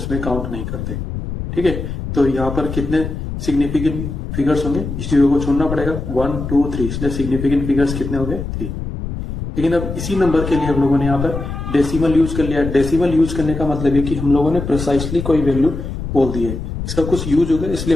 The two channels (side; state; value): left; noise; rumble, 6 dB below the sound